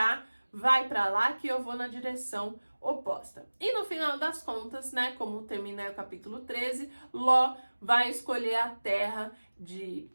vai para lá que eu vou na direção oposta. E no final das contas, né, como termina o capítulo 13, Ló vai escolher a terra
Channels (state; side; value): inverted; both; correlation -1.00